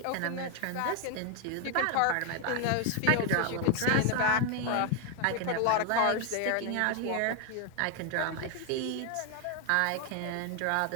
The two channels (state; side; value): different; both; correlation 0.01